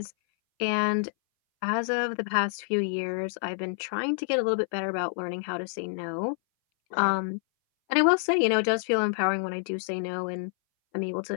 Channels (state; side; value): silent; right; 59 dB below the other